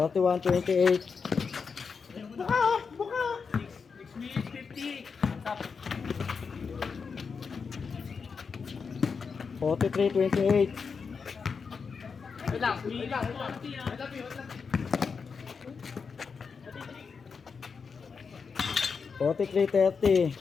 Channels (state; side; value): quieter; right; 5.5 dB